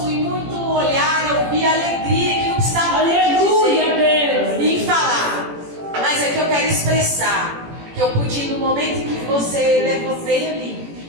em muito olhar, eu vi a alegria que não precisava dizer e falar. Mas é que eu quero expressar que eu pude, no momento em que você veio ali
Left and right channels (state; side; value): late; left; 18 ms